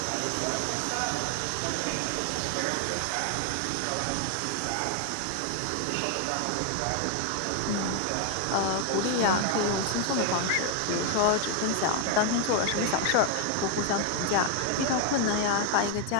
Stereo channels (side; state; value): both; different; correlation 0.00